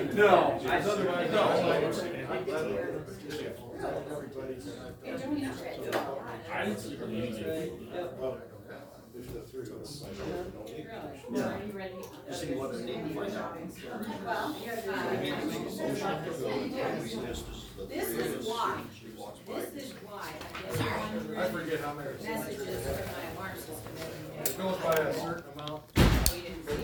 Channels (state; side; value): identical; both; correlation 1.00